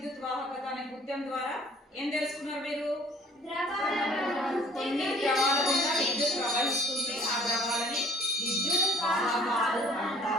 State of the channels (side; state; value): both; normal; correlation 0.53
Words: వాహకత అనే కృత్యం ద్వారా ఏం తెలుసుకున్నారు మీరు? కొన్ని ద్రవాల గుండా విద్యుత్ ప్రవహిస్తుంది, ఆ ద్రవాలని విద్యుత్ వాహకాలు